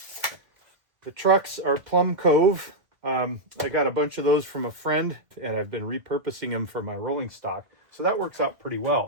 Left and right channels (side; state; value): left; late; 1.7 ms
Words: The trucks are Plum Cove. I got a bunch of those from a friend, and I've been repurposing them for my rolling stock. So that works out pretty